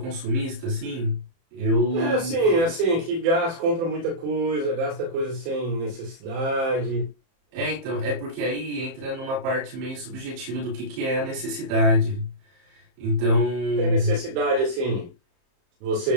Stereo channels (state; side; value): late; left; 30 ms